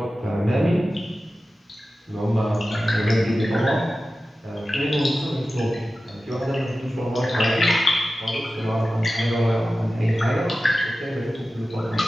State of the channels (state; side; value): normal; both; correlation 0.94